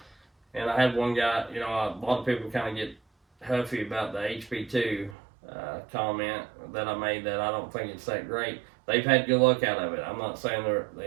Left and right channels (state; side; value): drops out; left; at 5.2 s